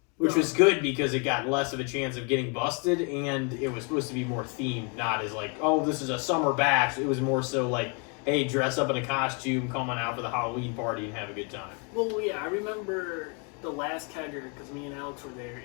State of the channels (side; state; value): right; quieter; 34.3 dB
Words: which was good because it got less of a chance of getting busted, and it was supposed to be more themed, not as like, oh, this is a summer bash. It was more so like, hey, dress up in a costume, come on out for the Halloween party and have a good time. Well, yeah, I remember the last kegger because me and Alex were there,